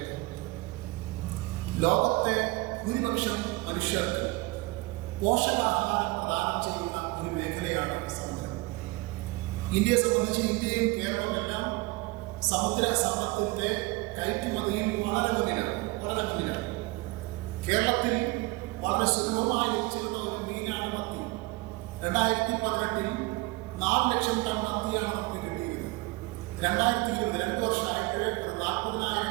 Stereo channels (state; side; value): quieter; left; 23.3 dB